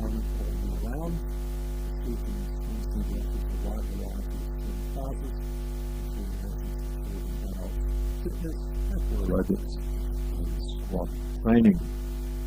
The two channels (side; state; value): both; identical; correlation 1.00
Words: all year round, the Seaton Swim Centre offers a wide variety of swim classes, including lessons for children, adults, fitness, aqua aerobics and squad training.